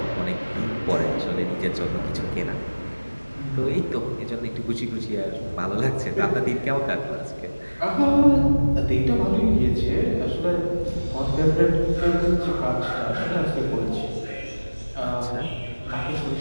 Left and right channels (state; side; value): inverted; both; correlation -1.00